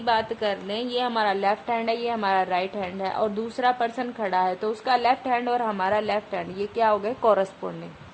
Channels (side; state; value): both; identical; correlation 1.00